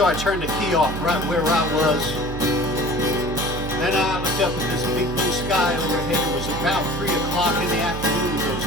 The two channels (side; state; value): right; noise; hum, 8 dB below the sound